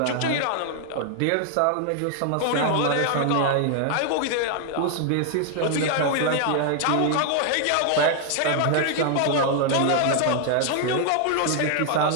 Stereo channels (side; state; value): both; different; correlation 0.00